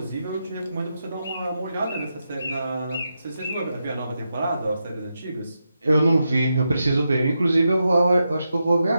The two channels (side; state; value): both; inverted; correlation -0.86